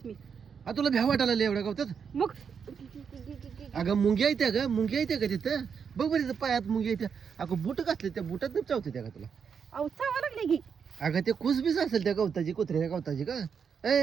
मी. तुला भ्या वाटायला लागलं एवढ्या गावात मग अगं मुंग्या येत्या ग मुंग्या येत्या का तिथं बघ बरं तिथं पायात मुंग्या येत्या अगं बुट घातले त्या बुटात चावते त्या का तुला अहो चावा लागले की. अगं ते खुसबीस असेल त्या गवताची कुत्र्याच्या गवताची का ए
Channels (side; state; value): left; quieter; 6.7 dB